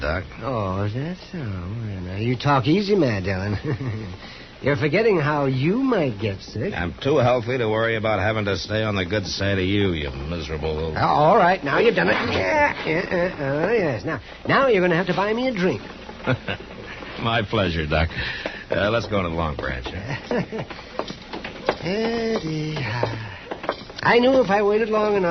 Doc. Oh, is that so? Well, now, you talk easy, Mad Dillon. You're forgetting how you might get sick. I'm too healthy to worry about having to stay on the good side of you miserable old... Oh, all right, now you've done it. Yes. Now you're going to have to buy me a drink. My pleasure, Doc. Let's go to the Long Branch. I knew if I waited long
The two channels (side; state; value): both; identical; correlation 1.00